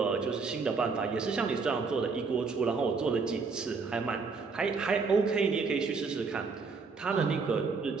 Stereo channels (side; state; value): left; quieter; 4.7 dB